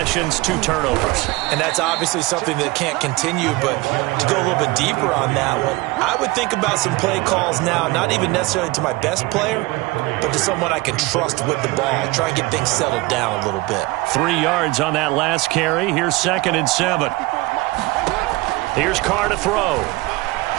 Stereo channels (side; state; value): left; quieter; 21.8 dB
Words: 2 turnovers. And that's obviously something that can't continue, but to go a little bit deeper on that one, I would think about some play calls now, not even necessarily to my best player, but to someone I can trust with the ball. Try and get things settled down a little bit. 3 yards on that last carry. Here's 2nd and 7. Here's Carr to throw.